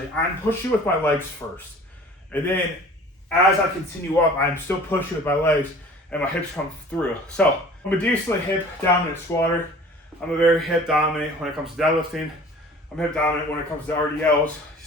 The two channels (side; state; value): both; normal; correlation 0.46